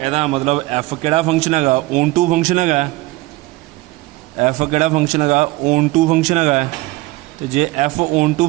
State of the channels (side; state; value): left; quieter; 20.4 dB